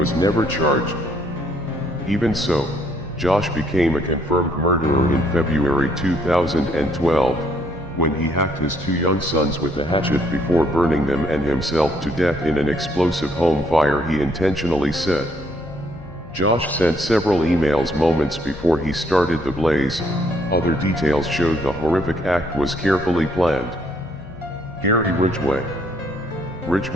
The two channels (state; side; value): normal; both; correlation 0.69